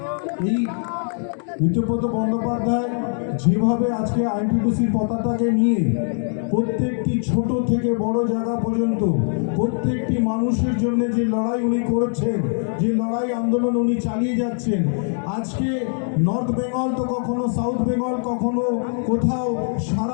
এই ঋতব্রত বন্দ্যোপাধ্যায় যেভাবে আজকে আইএনটিটিউসির পতাকাকে নিয়ে প্রত্যেকটি ছোট থেকে বড় জায়গা পর্যন্ত প্রত্যেকটি মানুষের জন্য যে লড়াই উনি করেছেন, যে লড়াই আন্দোলন উনি চালিয়ে যাচ্ছেন, আজকে নর্থ বেঙ্গল তো কখনো সাউথ বেঙ্গল, কখনো কোথাও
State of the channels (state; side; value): silent; right; 55 dB below the other